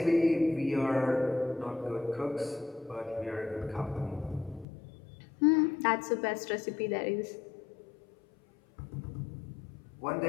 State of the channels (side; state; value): right; drops out; at 4.7 s